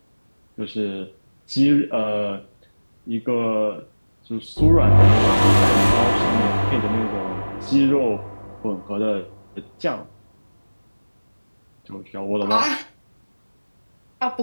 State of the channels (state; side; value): inverted; both; correlation -1.00